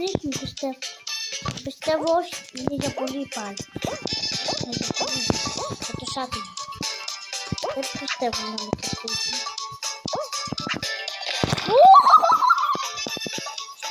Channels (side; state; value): both; identical; correlation 1.00